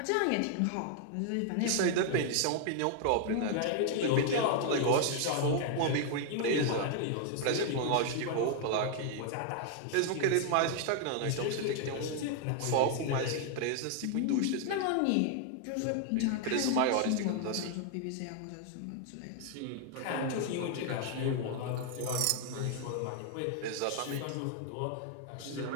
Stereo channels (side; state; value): both; different; correlation 0.00